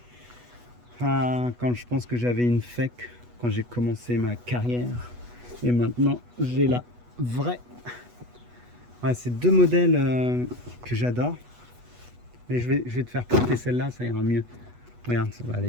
Ah, quand je pense que j'avais une fake quand j'ai commencé ma carrière. Et maintenant, j'ai la vraie. Ouais, c'est deux modèles que j'adore. Mais je vais te faire porter celle-là, ça ira mieux. Regarde, ça va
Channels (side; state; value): left; late; 8.2 ms